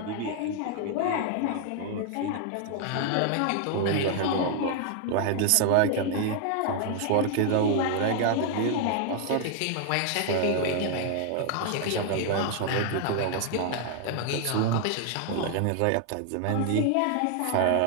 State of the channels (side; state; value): both; different; correlation 0.00